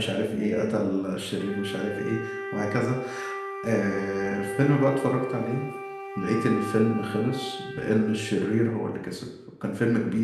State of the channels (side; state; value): both; identical; correlation 1.00